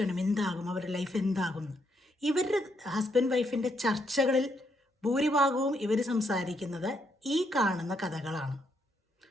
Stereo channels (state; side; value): normal; both; correlation 0.76